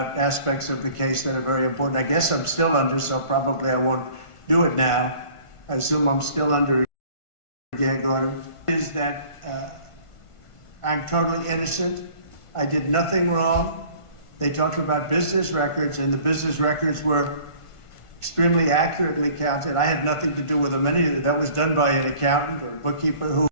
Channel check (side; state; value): right; late; 1.5 ms